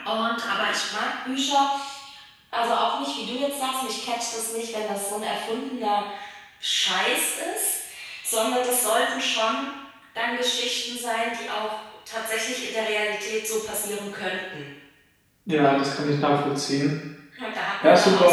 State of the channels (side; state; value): both; identical; correlation 1.00